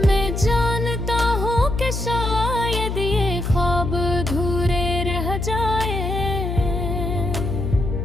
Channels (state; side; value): noise; left; hum, 3 dB below the sound